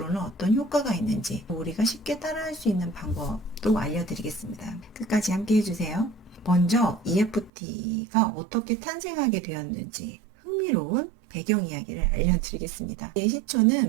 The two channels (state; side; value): drops out; left; at 7.5 s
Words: 어떤 효과가 있는지, 우리가 쉽게 따라할 수 있는 방법도 알려드리겠습니다. 끝까지 함께 해주세요. 먼저 EFT가 어떻게 탄생하게 되었는지 흥미로운 배경 이야기를 알려드리겠습니다. 이